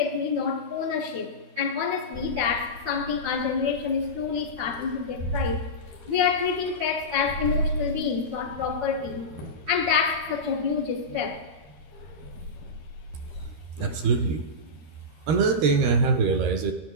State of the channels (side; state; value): left; late; 13 ms